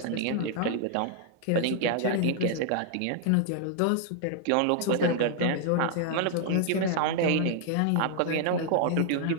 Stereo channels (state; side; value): different; both; correlation 0.00